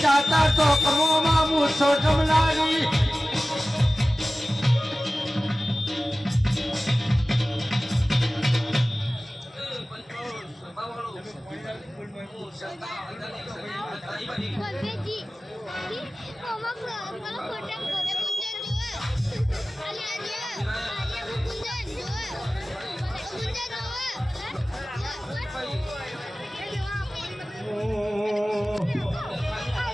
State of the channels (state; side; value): normal; both; correlation 0.97